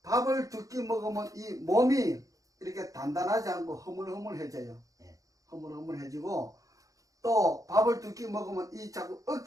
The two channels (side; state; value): left; late; 0.17 ms